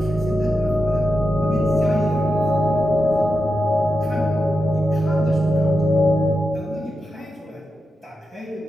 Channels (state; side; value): normal; both; correlation 0.89